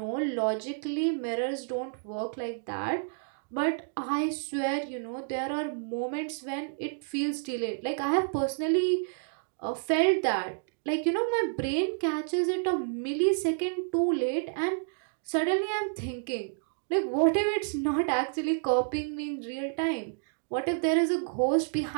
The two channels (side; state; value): left; silent; digital silence